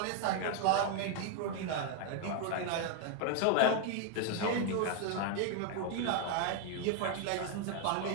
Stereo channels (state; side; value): different; both; correlation 0.01